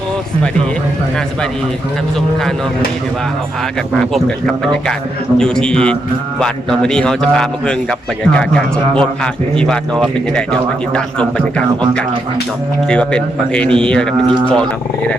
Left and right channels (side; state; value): both; normal; correlation 0.81